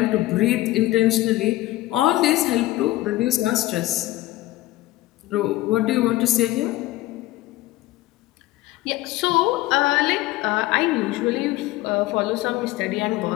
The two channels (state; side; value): quieter; right; 17.3 dB